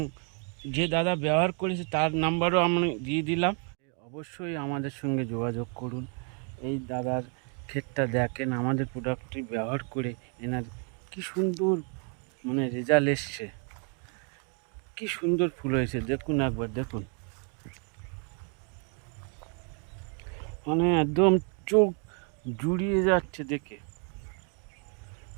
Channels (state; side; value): quieter; left; 39.6 dB